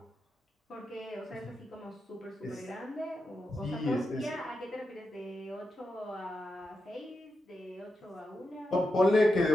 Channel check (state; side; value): normal; both; correlation 0.88